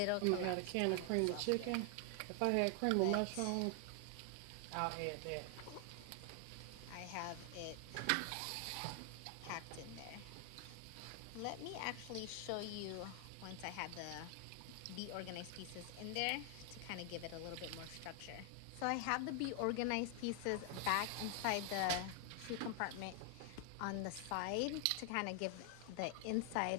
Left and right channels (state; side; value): different; both; correlation 0.00